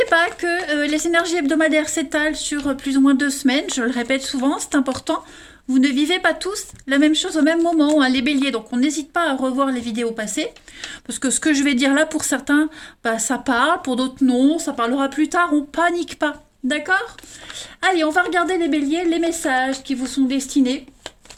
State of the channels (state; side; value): identical; both; correlation 1.00